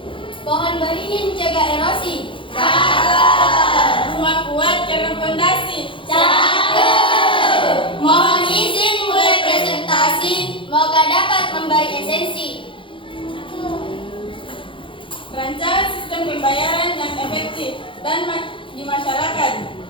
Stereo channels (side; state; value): right; late; 0.25 ms